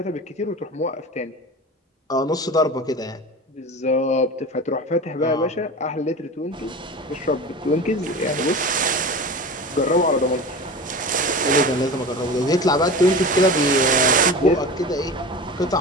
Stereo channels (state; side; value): normal; both; correlation 0.32